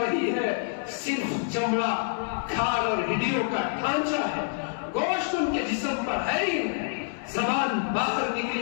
رہی ہے، صرف چمڑا، کھال اور ہڈیوں کا ڈھانچہ ہے، گوشت ان کے جسم پر ہے ہی نہیں، زبان باہر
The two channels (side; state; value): right; silent; digital silence